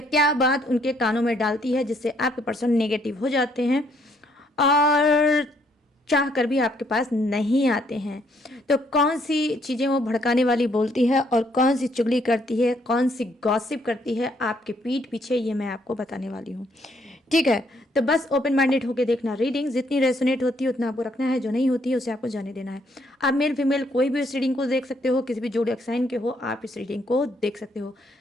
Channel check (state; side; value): normal; both; correlation 0.69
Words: क्या बात उनके कानों में डालती है जिससे आपके पर्सन नेगेटिव हो जाते हैं और चाह कर भी आपके पास नहीं आते हैं। तो कौन सी चीज़ें वो भड़काने वाली बोलती है और कौन सी चुगली करती है, कौन सी गॉसिप करती है आपके पीठ पीछे, ये मैं आपको बताने वाली हूँ। ठीक है, तो बस ओपन माइंडेड होकर देखना। रीडिंग जितनी रेसोनेट होती है उतना आपको रखना है, जो नहीं होती है उसे आपको जाने देना है। आप मेल फीमेल कोई भी इस रीडिंग को देख सकते हो, किसी भी जोड़े साइन के हो आप इस रीडिंग को देख सकते हो।